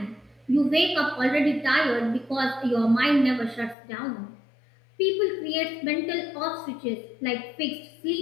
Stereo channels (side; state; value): right; drops out; at 3.8 s